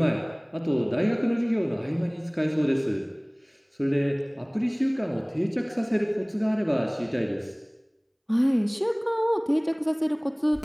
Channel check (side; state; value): both; identical; correlation 1.00